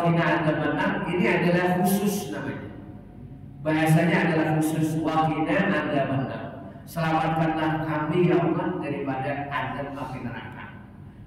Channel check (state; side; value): identical; both; correlation 1.00